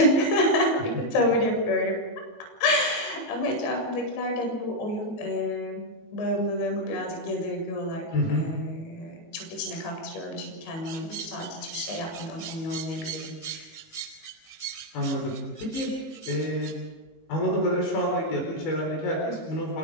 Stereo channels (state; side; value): late; right; 19 ms